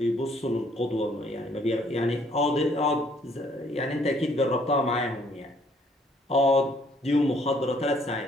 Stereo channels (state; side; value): normal; both; correlation 0.63